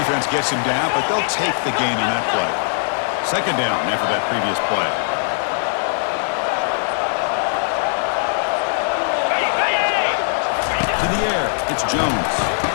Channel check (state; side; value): silent; right; 62 dB below the other